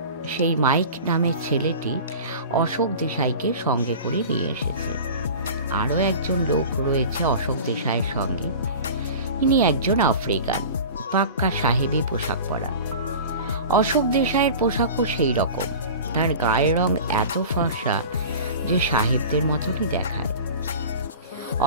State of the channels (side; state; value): both; inverted; correlation -0.37